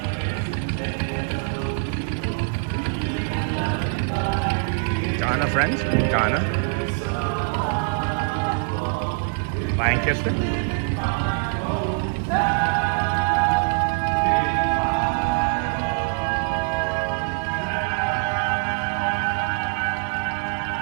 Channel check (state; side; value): silent; left; 56 dB below the other